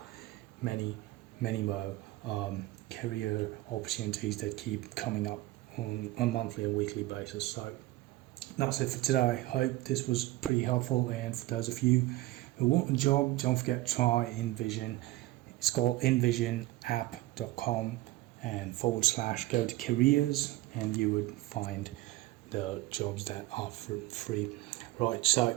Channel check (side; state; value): left; quieter; 17.5 dB